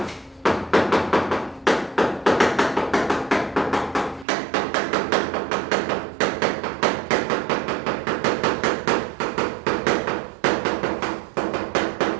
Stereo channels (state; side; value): drops out; left; at 4.2 s